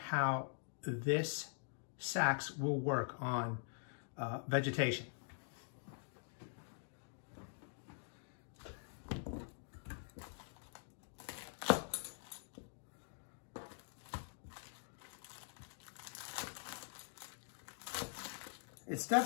this sax will work on vegetation. It's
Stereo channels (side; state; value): right; silent; digital silence